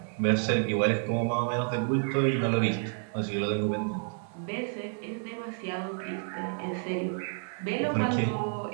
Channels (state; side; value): silent; left; 57 dB below the other